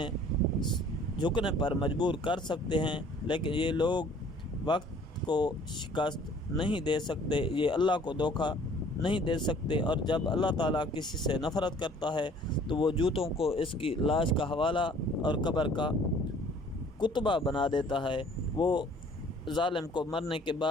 جھکنے پر مجبور کر سکتے ہیں، لیکن یہ لوگ وقت کو شکست نہیں دے سکتے، یہ اللہ کو دھوکہ نہیں دے سکتے۔ اور جب اللہ تعالیٰ کسی سے نفرت کرتا ہے تو وہ جوتوں کو اس کی لاش کا حوالہ اور قبر کا کتبہ بنا دیتا ہے، وہ ظالم کو مرنے کے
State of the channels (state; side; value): normal; both; correlation 0.54